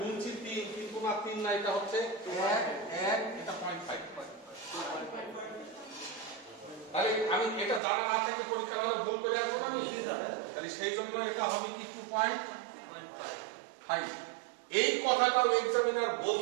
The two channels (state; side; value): drops out; left; at 7.8 s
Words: 3, কিন্তু না 3 না, এটা হচ্ছে 1 1, এটা 0.5। তাহলে আমি এটা জানা না থেকে পরীক্ষা হলে ভুল করে আসবো না আমি, তাহলে সেই জন্য এটা হবে কি 2.5। এই কথাটাও এক্সামিনার